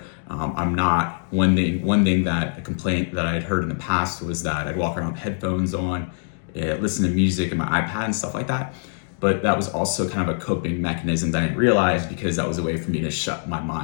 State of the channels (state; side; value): silent; right; digital silence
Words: I'm not, one thing that a complaint that I had heard in the past was that I'd walk around with headphones on, listen to music and my iPad and stuff like that. But that was also kind of a coping mechanism that I didn't realize, because that was a way for me to shut my